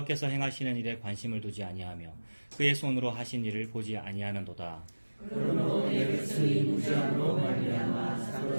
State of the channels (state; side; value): inverted; both; correlation -1.00